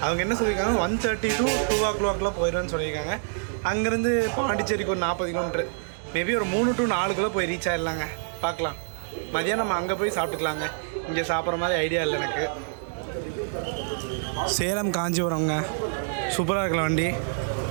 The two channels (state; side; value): silent; left; digital silence